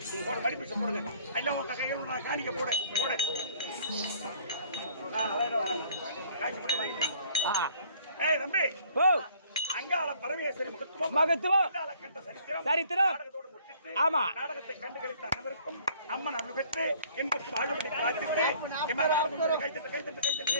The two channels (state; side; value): inverted; both; correlation -0.57